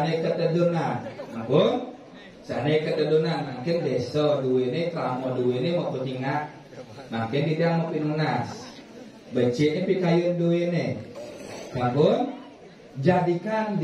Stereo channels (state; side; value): identical; both; correlation 1.00